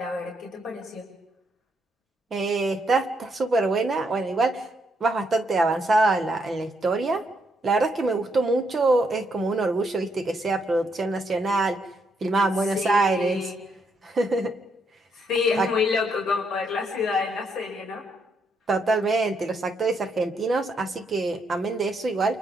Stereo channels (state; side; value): normal; both; correlation 0.76